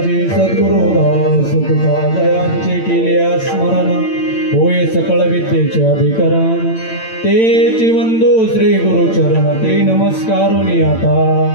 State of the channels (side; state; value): right; late; 8.9 ms